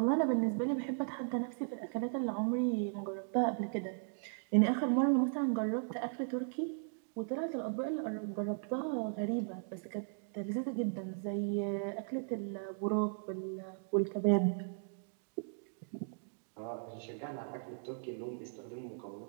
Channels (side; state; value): left; silent; digital silence